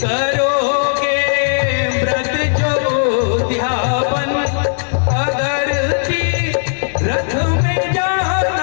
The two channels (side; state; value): right; silent; digital silence